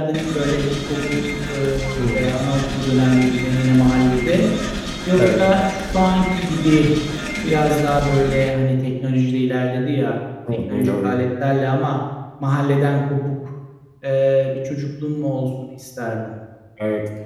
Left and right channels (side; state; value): both; identical; correlation 1.00